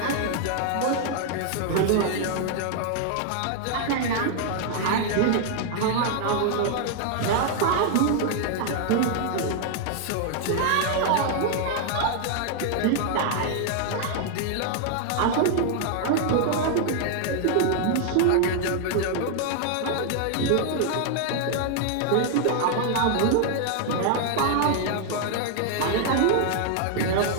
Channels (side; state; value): both; different; correlation 0.00